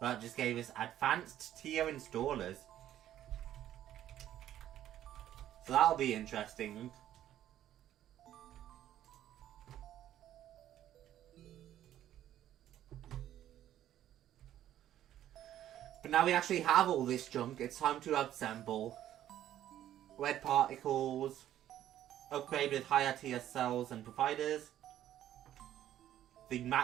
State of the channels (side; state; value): left; quieter; 12.0 dB